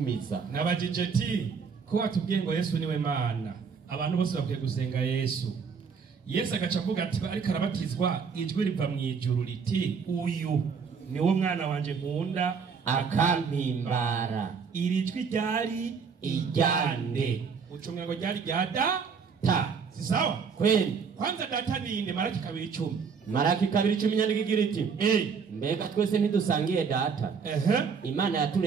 Nabajije ti ko atubwiye ngo Yesu niwe Mana. abantu bose bakwiye gusenga Yesu. Yesu agaca avuga ati ariko arabatizwa ijwi riva mu ijuru riti uyu niwo mwana wanje nkunda akampimbara. Iri jwi ryari ijyande. Ucunga ngo ryari rya data. Si sawa? Kweli. Kwanza data ni inde? Maraki 2:10. Maraki 2:10 nyandiko igira iti mbega twese ntidusangiye data. Imana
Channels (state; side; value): quieter; left; 5.9 dB